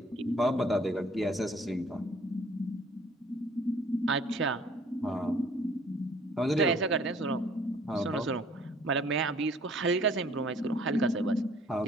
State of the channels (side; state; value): both; normal; correlation 0.56